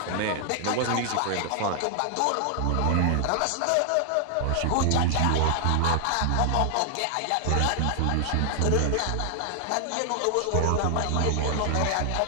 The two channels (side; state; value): both; different; correlation 0.00